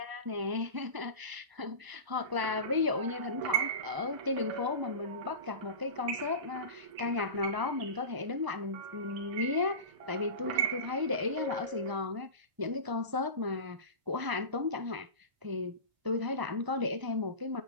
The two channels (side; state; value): left; late; 1.0 ms